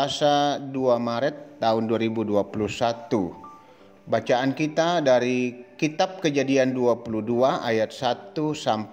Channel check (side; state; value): both; identical; correlation 1.00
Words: 2 Maret tahun 2021. Bacaan kita dari Kitab Kejadian 22 ayat 1